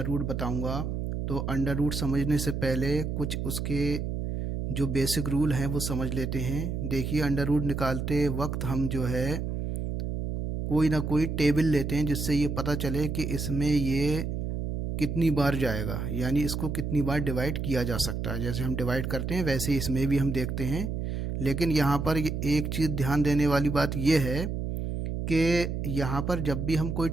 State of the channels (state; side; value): noise; right; hum, 3 dB below the sound